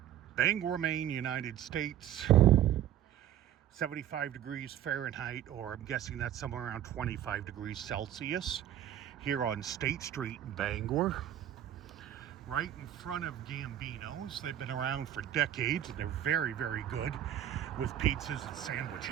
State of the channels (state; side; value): quieter; left; 11.2 dB